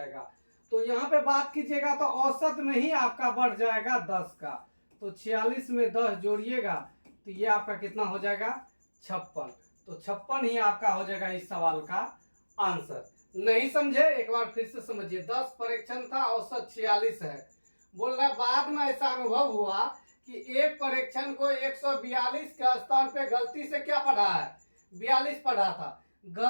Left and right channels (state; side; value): inverted; both; correlation -1.00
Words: तो यहाँ पे बात कीजिएगा तो औसत में ही आपका बढ़ जाएगा 10 का। तो 46 में 10 जोड़िएगा तो ये आपका कितना हो जाएगा? 56। तो 56 ही आपका हो जाएगा इस सवाल का आंसर। नहीं समझे? एक बार फिर से समझिए। 10 परीक्षण था, औसत 46 है। बोल रहा बाद में ऐसा अनुभव हुआ कि एक परीक्षण को 142 के स्थान पे गलती से क्या पढ़ा है? 42 पढ़ा था।